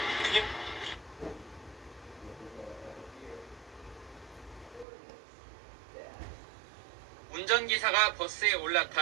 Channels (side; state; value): left; drops out; at 4.9 s